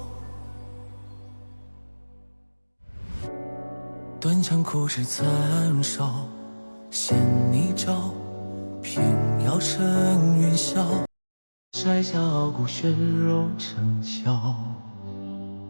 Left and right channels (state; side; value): inverted; both; correlation -1.00